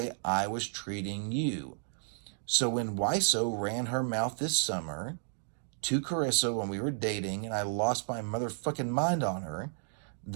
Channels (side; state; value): left; silent; digital silence